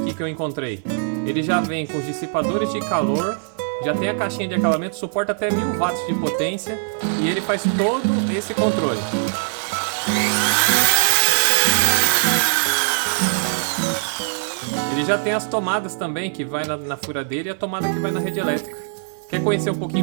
que eu encontrei. Ele já vem com os dissipadores de calor, já tem a caixinha de acabamento, suporta até 1000 watts de potência e ele faz todo esse controle. Ele já tem as tomadas também, que vai na furadeira, e a tomada que vai na rede elétrica. Quer conhecer um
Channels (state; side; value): silent; left; 59 dB below the other